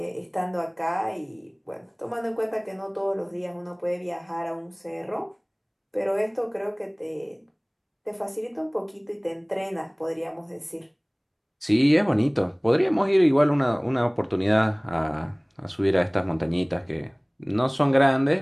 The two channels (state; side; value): identical; both; correlation 1.00